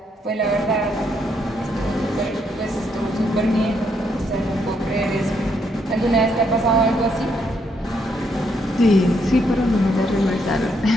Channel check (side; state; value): both; normal; correlation 0.75